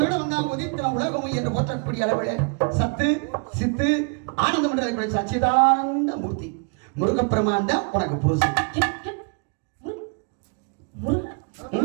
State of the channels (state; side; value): quieter; left; 36.8 dB